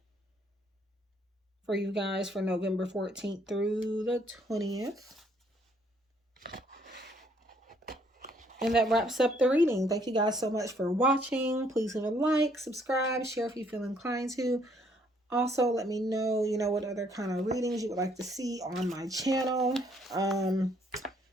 for you guys for November 14th through the 20th. And that wraps up the reading. Thank you guys so much for watching. Please leave a like, subscribe, share if you feel inclined to. Also, let me know, what other kind of readings you would like to see on my channel.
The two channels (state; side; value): normal; both; correlation 0.66